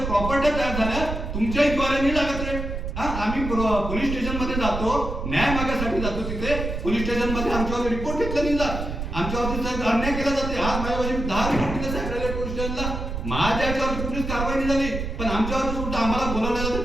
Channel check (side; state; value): right; noise; rumble, 5 dB below the sound